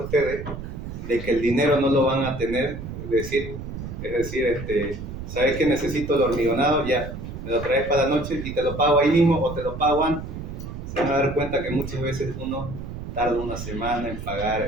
de que el dinero no lo van a tener, es decir, ¿sabes que necesito el hormigonado? Ya, me lo traes para la noche y te lo pago ahí mismo o te lo pago antes. Se van a dar cuenta que muchas veces uno tarda una semana en pagar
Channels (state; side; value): noise; right; rumble, 8 dB below the sound